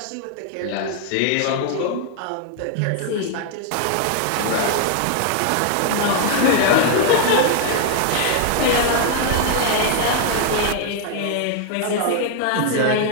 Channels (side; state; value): both; different; correlation 0.00